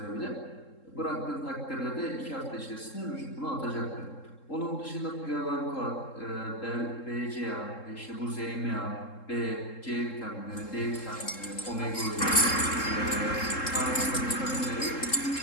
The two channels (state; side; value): late; right; 3.7 ms